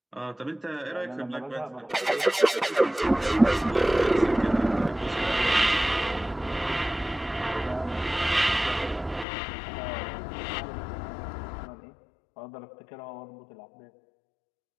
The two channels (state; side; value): drops out; right; at 9.2 s